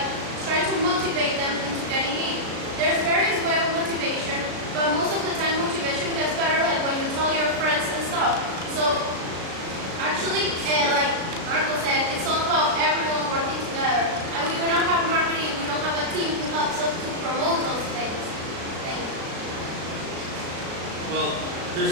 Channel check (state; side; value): late; left; 36 ms